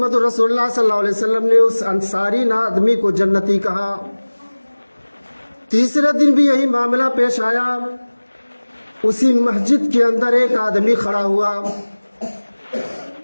رسول اللہ صلی اللہ علیہ وسلم نے اس انصاری آدمی کو جنتی کہا۔ تیسرے دن بھی یہی معاملہ پیش آیا، اسی مسجد کے اندر ایک آدمی کھڑا ہوا،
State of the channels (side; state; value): both; inverted; correlation -1.00